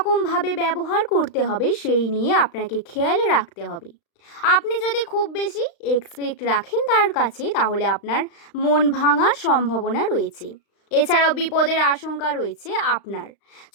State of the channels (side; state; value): right; late; 35 ms